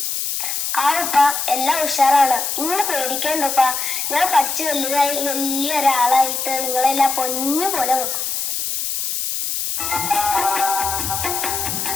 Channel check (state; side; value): noise; left; hiss, 2 dB below the sound